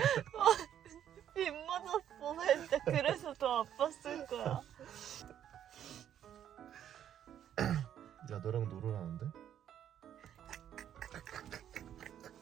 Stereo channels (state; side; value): quieter; left; 10.1 dB